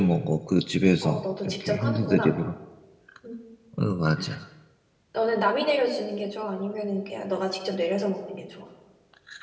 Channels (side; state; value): both; identical; correlation 1.00